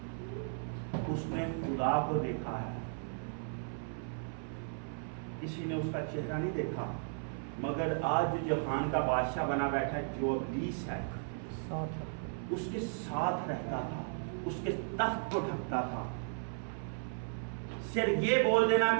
اس نے خدا کو دیکھا ہے, کسی نے اس کا چہرہ نہیں دیکھا, مگر آج جو جہان کا بادشاہ بنا بیٹھا ہے, جو ابلیس ہے, اس کے ساتھ رہتا تھا, اس کے تخت کو ڈھکتا تھا. صرف یہ بول دینا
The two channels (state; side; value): silent; left; 54 dB below the other